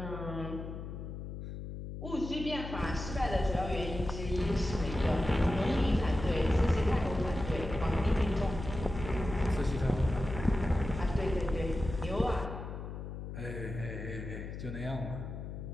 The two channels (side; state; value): left; noise; hum, 8 dB below the sound